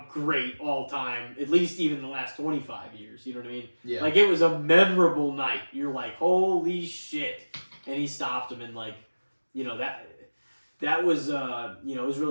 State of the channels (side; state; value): both; inverted; correlation -1.00